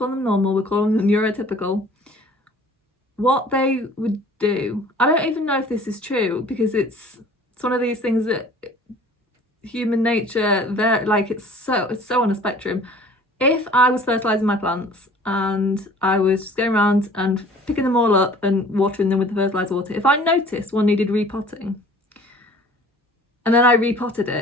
them normal, we're calling them neurotypical. What they would do, I don't even know if this is true, because it's one of these things that human nature, it's so on a spectrum. If I was fertilising my plants and I was just going around and picking them all up and watering them with the fertiliser water, if I noticed one needed repotting and then I repotted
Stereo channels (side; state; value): both; normal; correlation 0.49